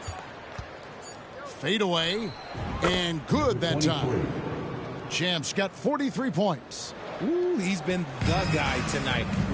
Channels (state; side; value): identical; both; correlation 1.00